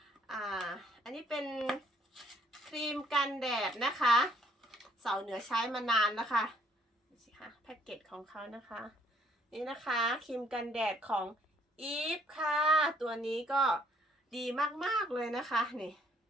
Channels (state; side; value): normal; both; correlation 0.64